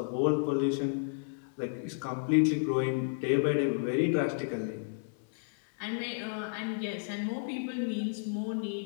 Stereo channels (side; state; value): right; silent; 57 dB below the other